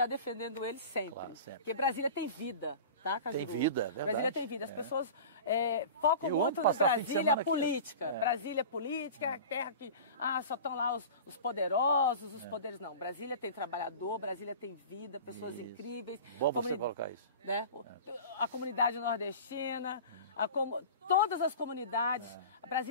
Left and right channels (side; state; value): both; inverted; correlation -0.36